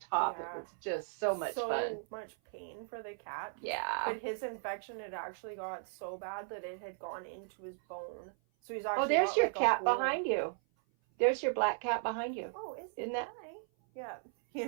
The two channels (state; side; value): silent; left; 54 dB below the other